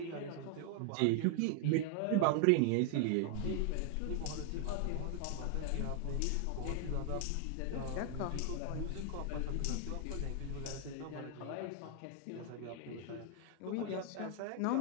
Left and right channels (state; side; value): different; both; correlation 0.00